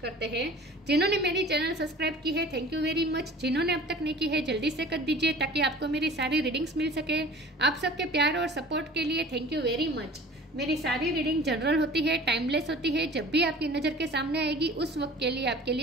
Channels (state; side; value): normal; both; correlation 0.44